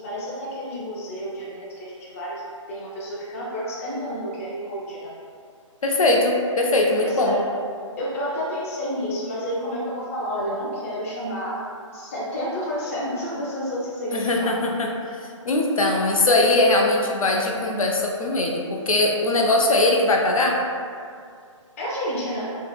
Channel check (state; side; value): normal; both; correlation -0.13